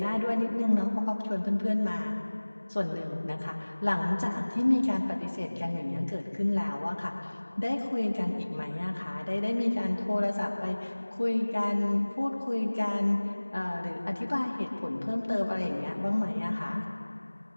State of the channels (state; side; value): inverted; both; correlation -1.00